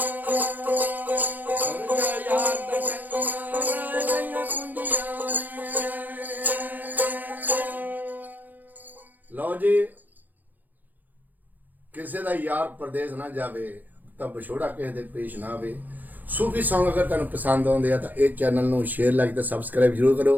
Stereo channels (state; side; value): late; left; 0.084 ms